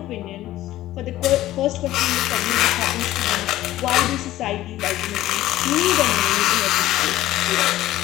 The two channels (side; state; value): right; quieter; 14.9 dB